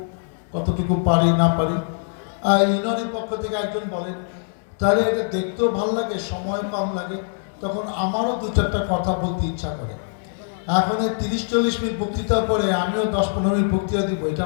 কতটুকু পারি না পারি। ইউনিয়নের পক্ষ থেকে একজন বলেন, তাহলে এটা দেখতেও ভালো লাগে, সময় কম লাগে, তখন আমারও 2-4টা কথা বলতে ইচ্ছা করে। এখন 30-40 মিনিট বক্তৃতার পরে আমিও 10-15 মিনিট বক্তৃতা দিব, এটা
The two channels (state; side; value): silent; right; 64 dB below the other